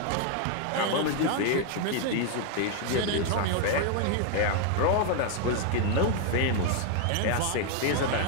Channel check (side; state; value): both; different; correlation 0.01